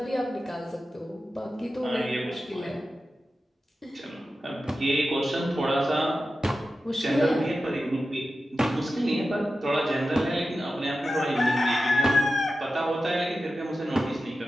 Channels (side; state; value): both; normal; correlation 0.93